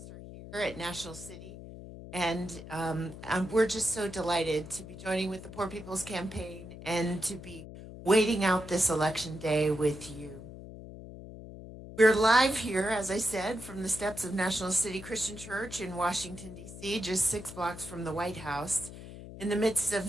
here at National City, and we're just so delighted to be joining with the Poor People's Campaign and to be waiting out this election day with you. We're live here, as I said, from the steps of National City Christian Church in Washington, D.C., just 6 blocks from the White House, in the midst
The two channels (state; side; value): noise; left; hum, 13 dB below the sound